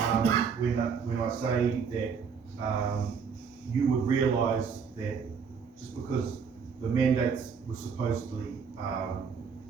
when I say that you would realise that just because the mandates were supposedly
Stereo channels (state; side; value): quieter; left; 6.1 dB